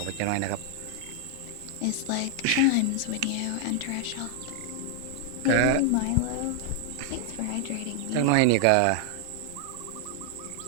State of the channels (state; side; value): different; both; correlation 0.00